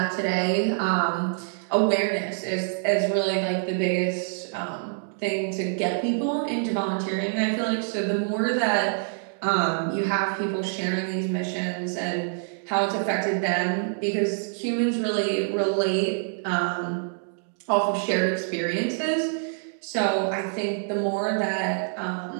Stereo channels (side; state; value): left; silent; digital silence